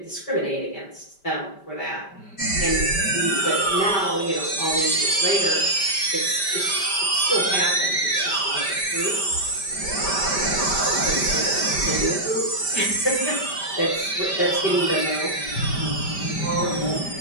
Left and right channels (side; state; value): right; late; 5.1 ms